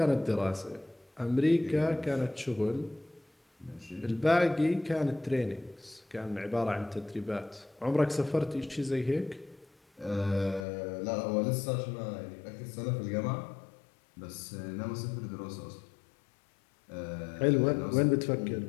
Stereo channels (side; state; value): right; drops out; at 10.7 s